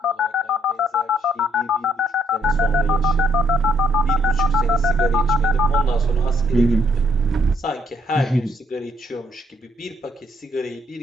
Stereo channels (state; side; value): normal; both; correlation 0.71